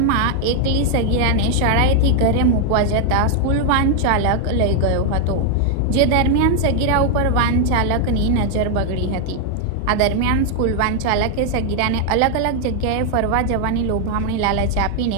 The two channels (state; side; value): different; both; correlation 0.00